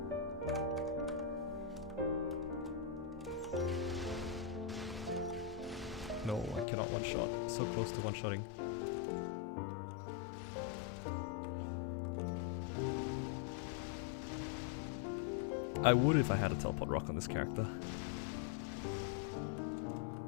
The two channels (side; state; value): right; drops out; at 6.7 s